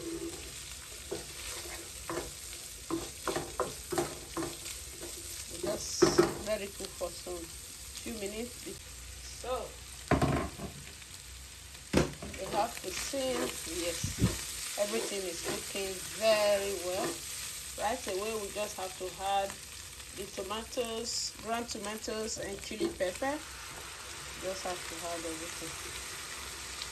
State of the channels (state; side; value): identical; both; correlation 1.00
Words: Just let it cook for some few minutes. So you have to see, yes, everything is cooking very well. Right away we just have to add the tomatoes, ground tomatoes and chili pepper. Just have to add everything.